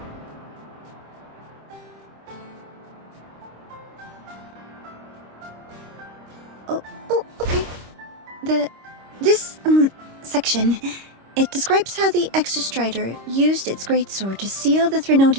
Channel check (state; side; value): late; left; 26 ms